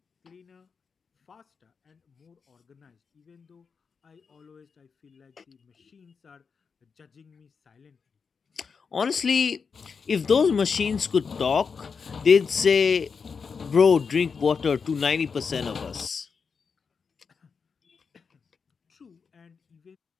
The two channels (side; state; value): right; quieter; 5.6 dB